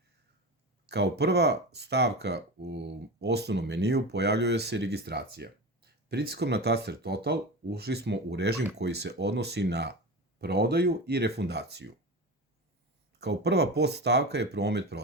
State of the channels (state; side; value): normal; both; correlation 0.27